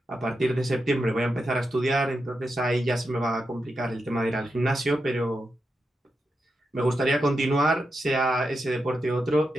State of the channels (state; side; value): normal; both; correlation 0.87